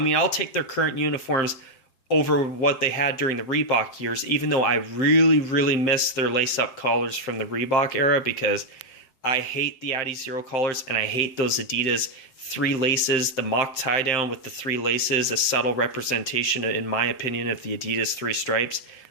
I'll take their current uniforms over what they had during the Reebok years, even though I really, really miss their lace-up collars from the Reebok era, because I hate the Addy Zero collars, and I hate those Adidas 3 laces, the mock tie-down with the 3 laces, a subtle representation, in my opinion, of the Adidas 3 stripes.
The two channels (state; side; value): late; right; 7.6 ms